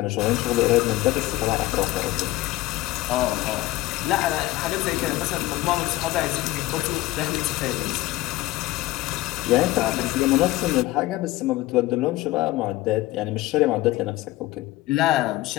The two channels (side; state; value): right; quieter; 17.6 dB